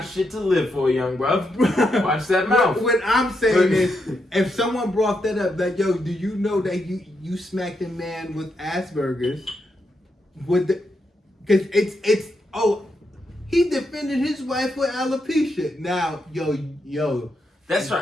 shit to live for, young bruv. Watch that mouth. What I'm saying is, if someone brought that up, like, yo, do you know that you smacked a man with Asperger's? Because he defended his wife with alopecia. Now, yo. That's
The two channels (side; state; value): both; normal; correlation 0.82